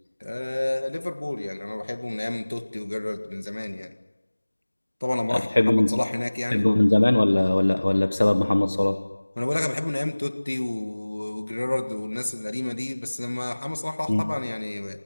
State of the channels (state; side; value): inverted; both; correlation -1.00